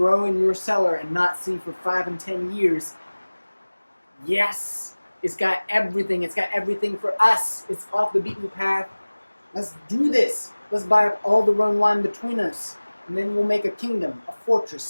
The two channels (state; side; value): inverted; both; correlation -1.00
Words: in your cellar and not see for 5 and 10 years. Yes, it's got everything. It's got everything for us. It's off the beaten path. Let's do this. Let's buy up all the Rhone wine between us. And then we'll make a kingdom, a